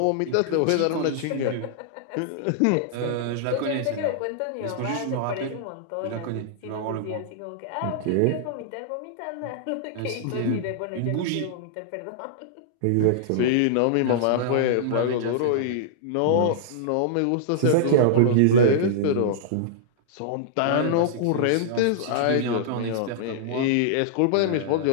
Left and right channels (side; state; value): both; different; correlation -0.02